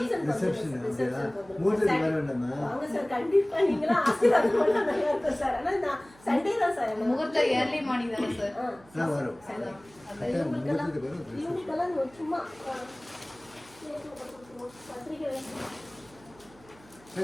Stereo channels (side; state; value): right; noise; hum, 26 dB below the sound